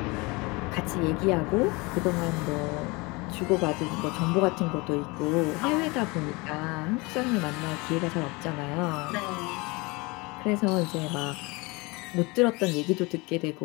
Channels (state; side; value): quieter; right; 25.9 dB